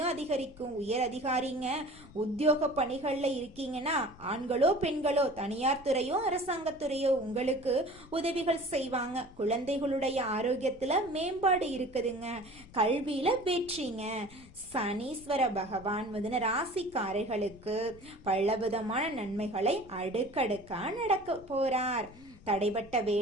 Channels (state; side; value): noise; left; rumble, 22 dB below the sound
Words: அதிகரிக்கும். உயர் அதிகாரிங்க உத்தியோக பணிகள்ல இருக்கீங்கன்னா ஆண்களோ பெண்களோ தனியார் துறையோ அரசாங்கத்துறையோ உங்களுக்கு உதவிகள் செய்வாங்க. குழந்தைகளுடைய ஆரோக்கியத்துல மேம்பாடு இருக்குதுங்க. கல்வியில வெற்றிங்க. சனீஸ்வர பகவான் மிதுன ராசிக்காரர்களுக்கு பலவிதமான நன்மைகளை அடுக்கடுக்கா நடக்க போறார். தடைபட்ட